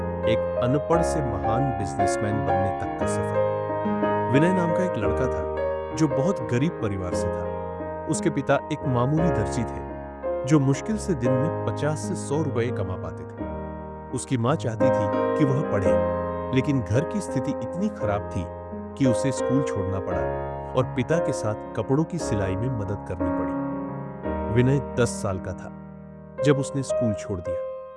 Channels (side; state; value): both; identical; correlation 1.00